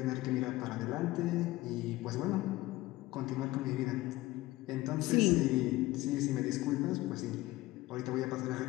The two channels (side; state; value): right; quieter; 18.4 dB